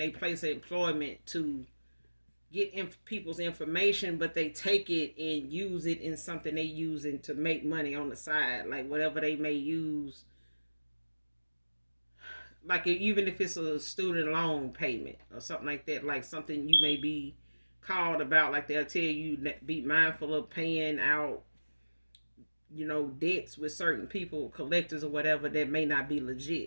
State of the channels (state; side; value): inverted; both; correlation -1.00